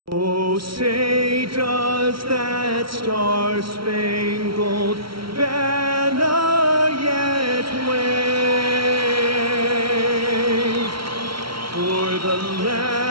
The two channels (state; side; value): late; left; 0.74 ms